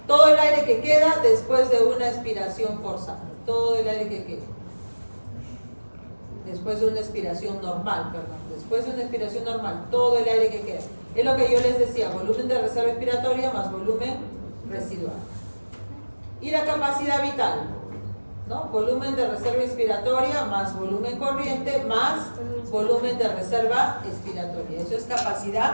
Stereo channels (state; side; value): inverted; both; correlation -1.00